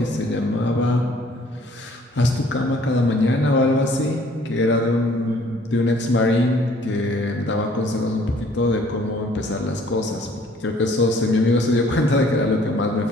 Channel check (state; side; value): normal; both; correlation 0.58